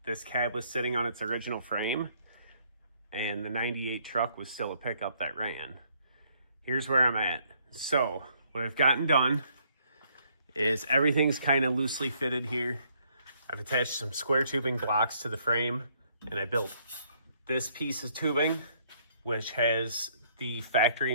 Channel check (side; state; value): both; inverted; correlation -0.67